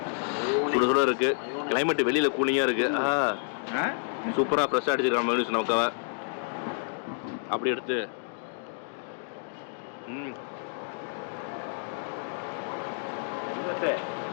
சுட சுட இருக்குது, கிளைமேட்டு வெளியில் கூலிங்காக இருக்குது. சூப்பராக ஃப்ரெஷ்ஷாக அடிச்சிருக்காங்க மைனஸ் நமக்காக. அப்படி எடுத்து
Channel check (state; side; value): silent; right; digital silence